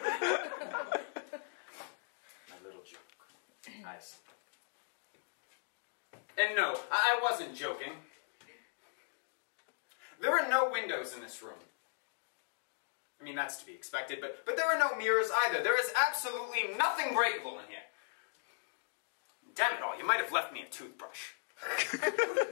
little joke. I see. And no, I wasn't joking. There are no windows in this room. I mean, that's to be expected, but there are no mirrors either. There is absolutely nothing breakable in here. Damn it all, you might have left me a toothbrush.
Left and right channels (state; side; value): silent; right; digital silence